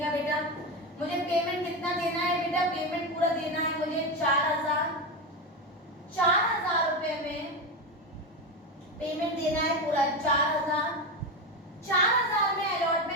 बेटा। मुझे पेमेंट कितना देना है बेटा, पेमेंट पूरा देना है मुझे 4000 रुपए में पेमेंट देना है पूरा 4000 में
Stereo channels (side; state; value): both; normal; correlation 0.16